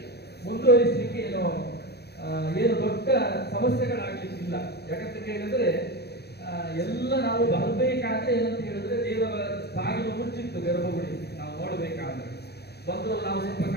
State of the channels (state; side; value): late; right; 0.48 ms